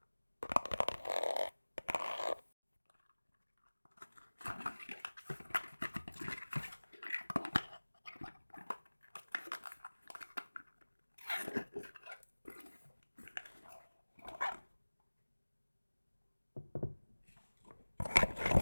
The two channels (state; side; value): inverted; both; correlation -1.00